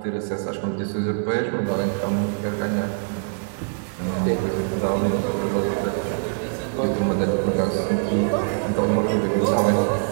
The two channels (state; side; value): silent; left; 63 dB below the other